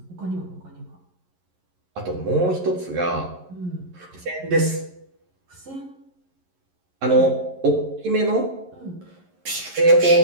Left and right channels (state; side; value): late; left; 11 ms